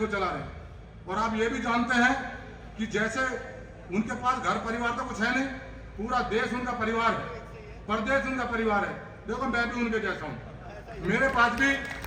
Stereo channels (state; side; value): identical; both; correlation 1.00